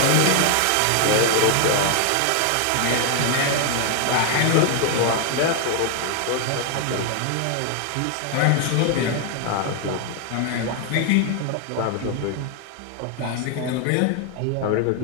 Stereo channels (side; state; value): both; different; correlation 0.00